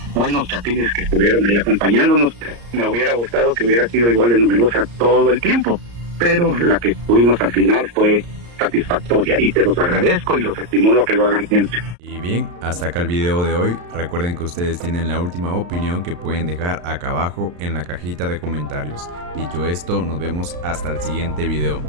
buenos chapines que estuvieron ahí acompañándonos. Me hubiera gustado que hubiera sido igual de numerosa todo el tiempo, pero la que tuvimos al final fue satisfactoria y te los agradezco y los estimulo a que lo hagan siempre. Y bien, hasta acá el video de hoy. Recuerden que ustedes tienen la última opinión que pueden dejar acá abajo en la cajita de comentarios. Dicho esto, nos vemos hasta el siguiente video.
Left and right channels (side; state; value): left; late; 34 ms